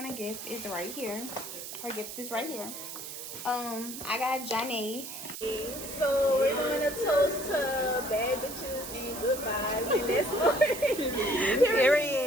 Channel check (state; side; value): noise; right; hiss, 9 dB below the sound